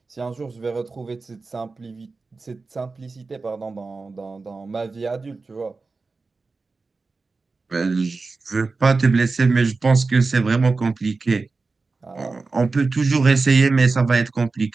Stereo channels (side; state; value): left; quieter; 4.0 dB